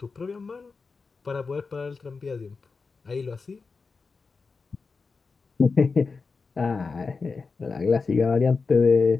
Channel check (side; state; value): right; quieter; 4.5 dB